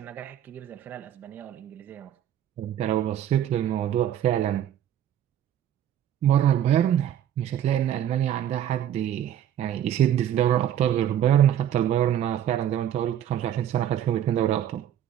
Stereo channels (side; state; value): left; quieter; 10.7 dB